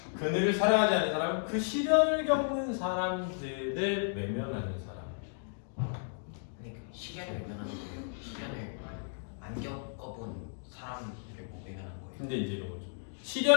그늘을 사랑하지 않는 사람은 그 시련을 겪는 사람들을 외면하는 사람. 근데 그 시련을 외면하는 거예요. 시련을 안 겪어본 사람을 뭐 외면하는 거예요. 근데 이제 이거죠.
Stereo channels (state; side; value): silent; right; digital silence